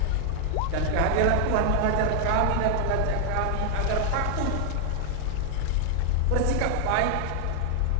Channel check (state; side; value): different; both; correlation 0.00